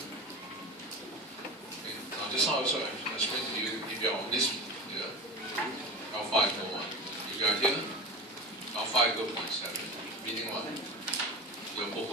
Okay. Now, just now I also explained to you, if you are on this here, alpha equal 1. If you are here, alpha equal 0.7. Meaning what? Your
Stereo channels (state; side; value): normal; both; correlation 0.30